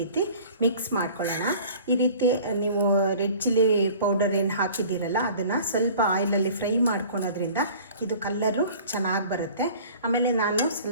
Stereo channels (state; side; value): inverted; both; correlation -0.46